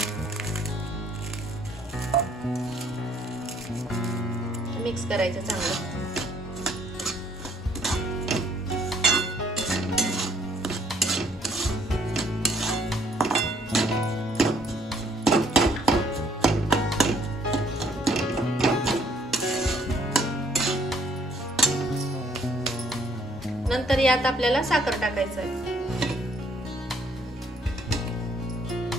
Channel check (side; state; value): both; normal; correlation 0.64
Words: मिक्स करायचं चांगलं। नंतर यात आपल्याला साखर टाकायचं आहे।